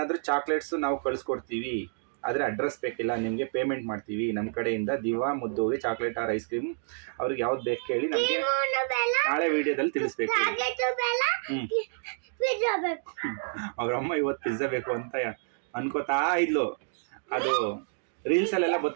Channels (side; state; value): left; silent; digital silence